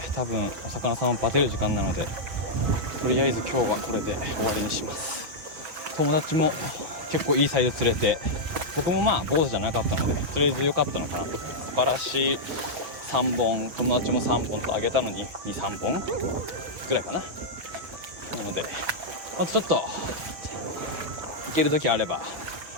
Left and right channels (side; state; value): left; late; 6.4 ms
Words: 多分お魚さんをバテる時間なので、とりあえず今日はこれで終わりにします。友達も結構いいサイズ釣れて、僕もまあ坊主じゃなかったのでとりあえず良かったのかなと。バラシ3本、友達も3本とあげたのに 2,3 本ぐらいかな。なのでまたちょっと行ける時あれば